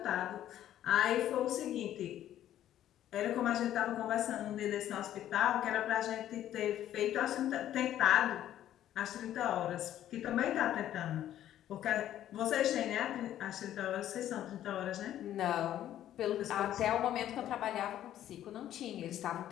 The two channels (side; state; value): right; quieter; 11.9 dB